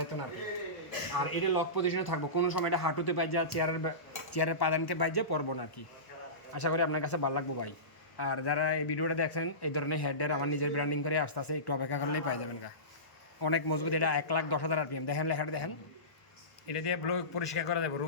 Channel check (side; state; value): right; late; 1.1 ms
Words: না আর কি। আর এটা লক পজিশনে থাকবো, কোনো সময় এটা হাঁটুতে পাই যা, চেয়ারের পাদানিতে পাই যা পড়বো না আর কি। আশা করি আপনার কাছে ভালো লাগবো ভাই। আর যারা এই ভিডিওটা দেখছেন, এই ধরনের হেডের আমার নিজের ব্র্যান্ডিং করে আসতে আসে, একটু অপেক্ষা করলেই পাই যাবেন গা। অনেক মজবুত, এটা 1,10,000 RPM। দেখেন লেখাটা দেখেন, এটা দিয়ে ব্লো পরিষ্কার করা যাবে,